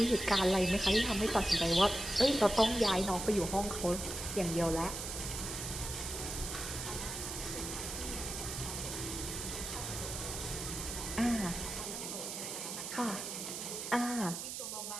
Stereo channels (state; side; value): noise; right; hiss, 5 dB below the sound